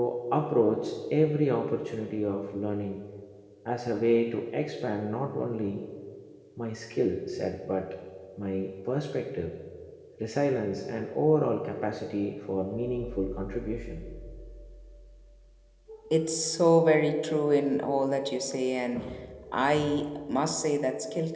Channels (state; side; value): identical; both; correlation 1.00